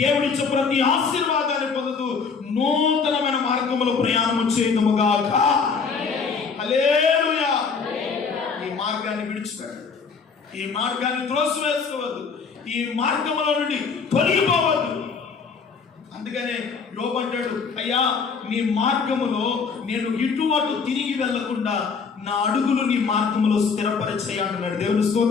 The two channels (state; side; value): quieter; right; 5.4 dB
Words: ప్రతి ఆశీర్వాదాన్ని పొందుతూ నూతనమైన మార్గములో ప్రయాణం చేయదుముగాక. హల్లెలూయా. ఈ మార్గాన్ని విడిచిపెట్టండి. ఈ మార్గాన్ని త్రోసివేసుకోవద్దు. ఈ మార్గములో నుండి తొలగిపోవద్దు. అందుకనే యోబు అంటాడు, అయ్యా నీ మార్గములో నేను ఇటు అటు తిరిగి వెళ్లకుండా నా అడుగులు నీ మార్గములో స్థిరపరిచేయి అంటున్నాడు. దేవుని